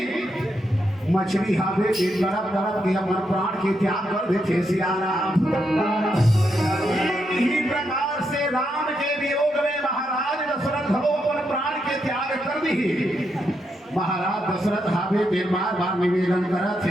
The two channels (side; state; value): both; normal; correlation 0.81